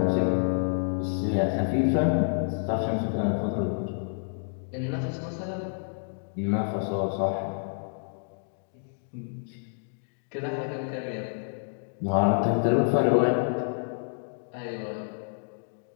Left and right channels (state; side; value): silent; right; digital silence